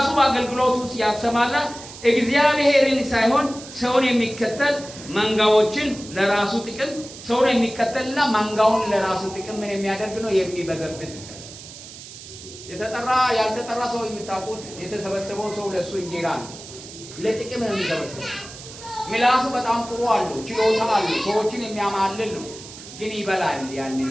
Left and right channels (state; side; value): noise; right; hiss, 15 dB below the sound